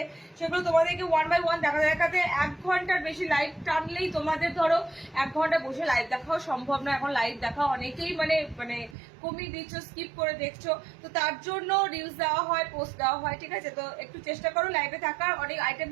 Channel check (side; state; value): left; drops out; at 9.0 s